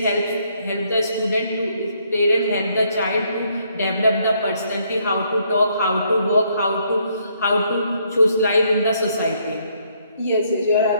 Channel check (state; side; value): inverted; both; correlation -0.70